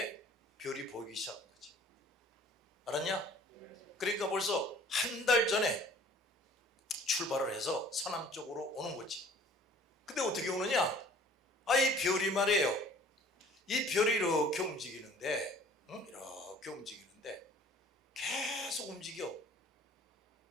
별이 보이기 시작한 거지. 알았냐? 그러니까 벌써 한 달 전에 출발을 해서 서남 쪽으로 오는 거지. 근데 어떻게 오느냐? 이 별이 말이에요. 이 별이 이렇게 움직이는데, 이렇게 움직이는데 계속 움직여.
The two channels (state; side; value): normal; both; correlation 0.51